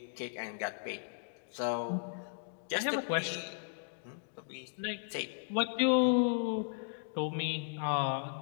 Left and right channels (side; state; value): right; silent; digital silence